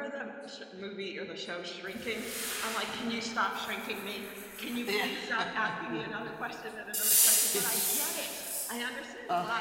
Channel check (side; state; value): both; identical; correlation 1.00